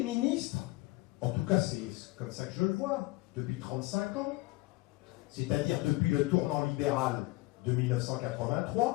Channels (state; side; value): quieter; right; 21.4 dB